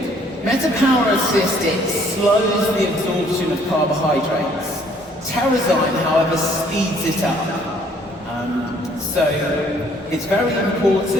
MetaPower Assist, it slows the absorption of carbohydrates. Terrazyme, however, speeds it up. So it's very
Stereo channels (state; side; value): normal; both; correlation 0.61